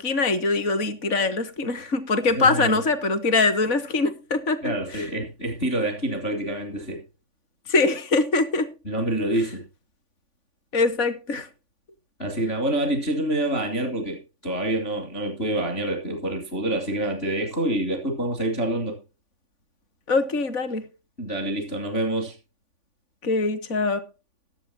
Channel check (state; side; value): late; right; 3.5 ms